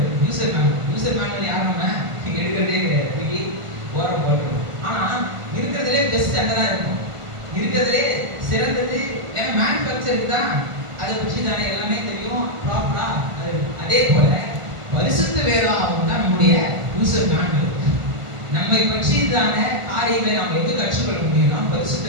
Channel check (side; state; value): left; late; 1.5 ms